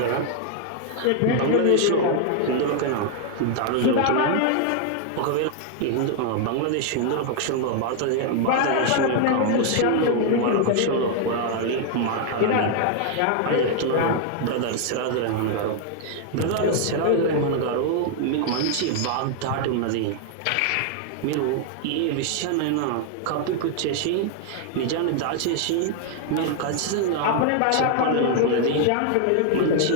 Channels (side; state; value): both; different; correlation 0.00